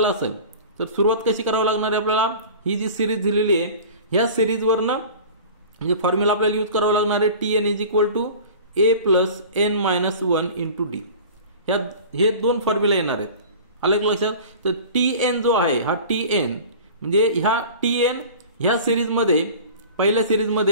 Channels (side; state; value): both; inverted; correlation -0.40